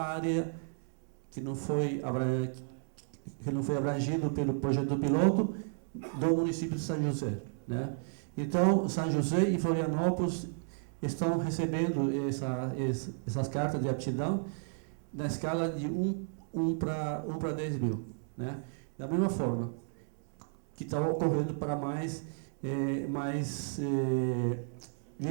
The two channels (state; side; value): silent; left; digital silence